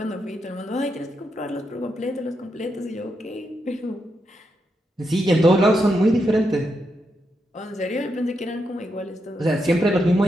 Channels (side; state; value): both; normal; correlation 0.83